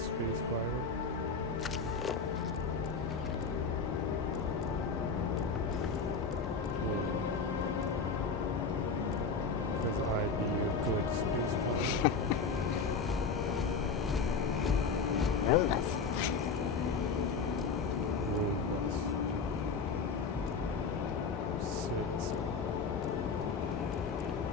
space pirate. Yeah. Because I'd be a good space pirate. Roombus. Roombus. Six.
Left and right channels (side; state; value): right; quieter; 4.9 dB